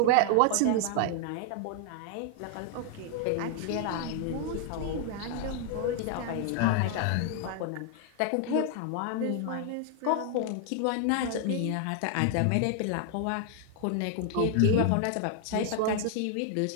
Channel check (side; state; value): both; different; correlation 0.00